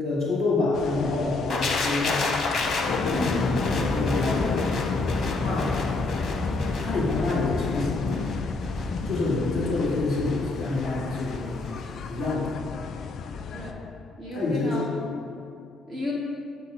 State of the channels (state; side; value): quieter; right; 3.1 dB